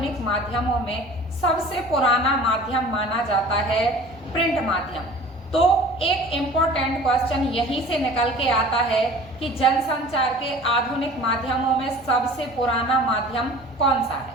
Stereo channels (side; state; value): both; normal; correlation 0.44